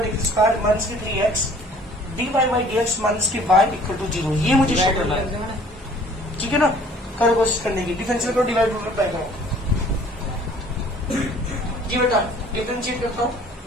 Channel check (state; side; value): normal; both; correlation 0.53